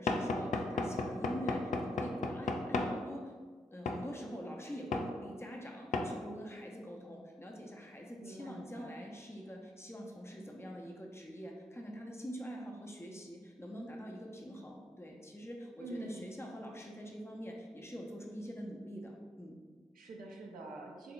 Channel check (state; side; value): normal; both; correlation 0.76